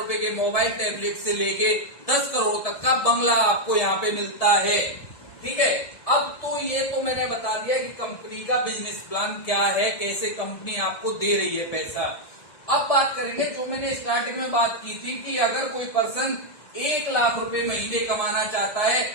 के मोबाइल टैबलेट से लेके 10 करोड़ तक का बंगला आपको यहाँ पे मिलता है। ठीक है, अब तो ये तो मैंने बता दिया कि कंपनी का बिजनेस प्लान क्या है, कैसे कंपनी आपको दे रही है पैसा। अब बात करेंगे जो मैंने स्टार्टिंग में बात की थी कि अगर कोई पर्सन 1 लाख रुपए महीने कमाना चाहता है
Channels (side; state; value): right; late; 1.7 ms